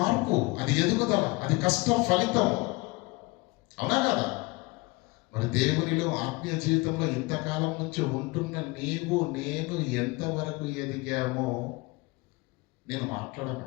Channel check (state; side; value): quieter; right; 24.6 dB